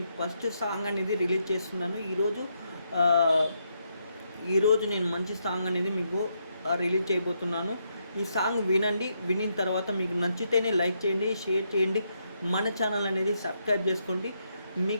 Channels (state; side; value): inverted; both; correlation -0.79